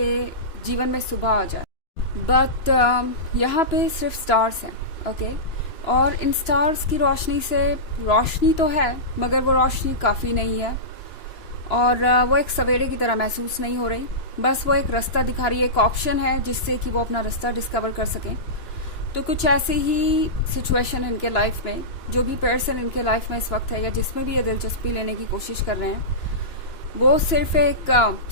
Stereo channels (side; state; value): right; late; 2.9 ms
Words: जीवन में सुबह आ जाए, बट यहाँ पे सिर्फ स्टार्स हैं। ओके, और इन स्टार्स की रोशनी से रोशनी तो है मगर वो रोशनी काफ़ी नहीं है और वो एक सवेरे की तरह महसूस नहीं हो रही। बस वो एक रास्ता दिखा रही है, एक ऑप्शन है जिससे कि वो अपना रास्ता डिस्कवर कर सकें। तो कुछ ऐसी ही सिचुएशन इनके लाइफ में, जो भी पर्सन इनके लाइफ में इस वक्त है या जिसमें भी ये दिलचस्पी लेने की कोशिश कर रहे हैं, वो सिर्फ एक